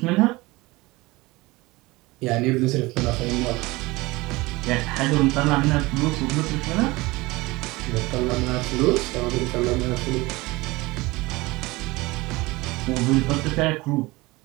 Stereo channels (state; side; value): quieter; left; 21.8 dB